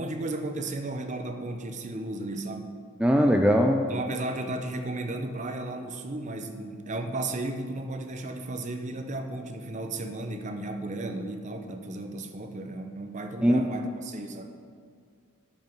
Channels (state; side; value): normal; both; correlation 0.75